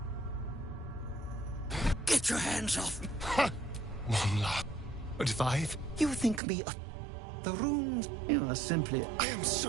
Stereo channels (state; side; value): drops out; left; at 6.4 s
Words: Get your hands off me! One laugh. But if You think me a... The runes... You are simply... I am so